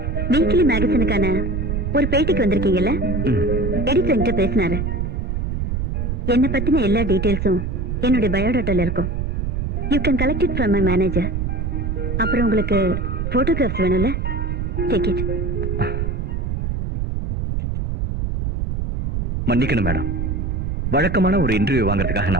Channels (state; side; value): noise; right; rumble, 1 dB below the sound